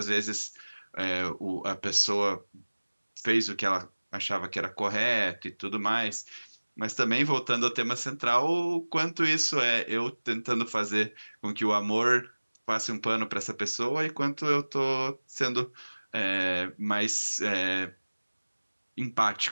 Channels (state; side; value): inverted; both; correlation -1.00